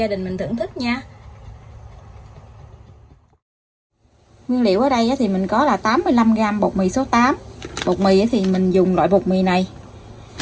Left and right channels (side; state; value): both; identical; correlation 1.00